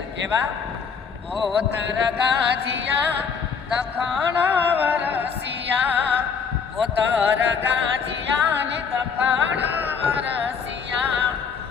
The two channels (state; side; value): quieter; right; 6.2 dB